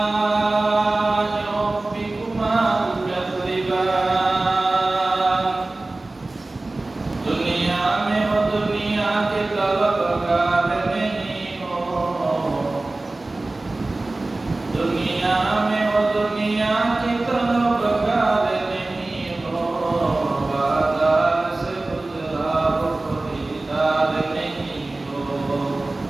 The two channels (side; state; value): left; quieter; 3.0 dB